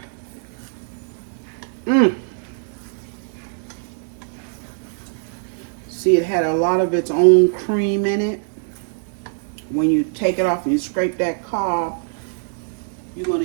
See, it had a lot of its own cream in it. When you take it off and you scrape that cob, you're going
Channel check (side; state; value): left; silent; digital silence